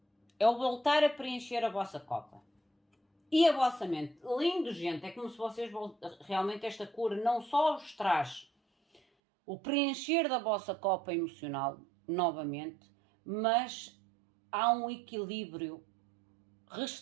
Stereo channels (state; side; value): drops out; left; at 9.0 s